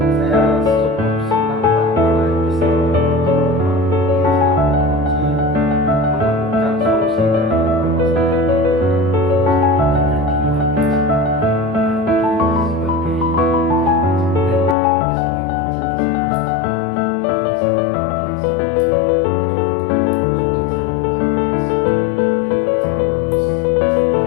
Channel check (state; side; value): drops out; right; at 14.8 s